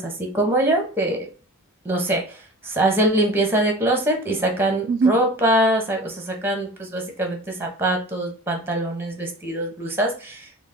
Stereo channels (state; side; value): normal; both; correlation 0.39